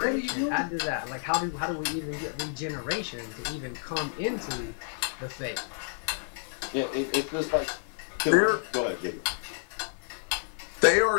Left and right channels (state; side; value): silent; right; 58 dB below the other